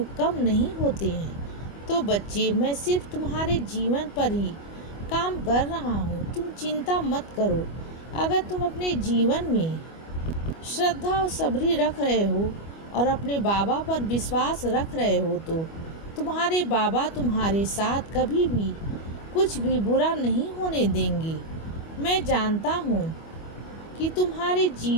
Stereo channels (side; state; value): right; late; 25 ms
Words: कम नहीं होते हैं? तो बच्चे, मैं सिर्फ तुम्हारे जीवन पर ही काम कर रहा हूँ, तुम चिंता मत करो। अगर तुम अपने जीवन में श्रद्धा और सब्री रख रहे हो और अपने बाबा पर विश्वास रख रहे हो तो तुम्हारे बाबा तुम्हारे साथ कभी भी कुछ भी बुरा नहीं होने देंगे। मैं जानता हूँ कि तुम्हारे